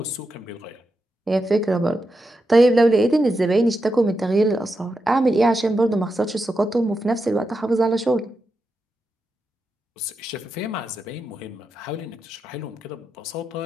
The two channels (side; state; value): both; normal; correlation 0.87